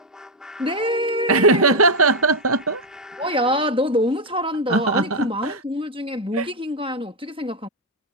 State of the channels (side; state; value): both; normal; correlation 0.02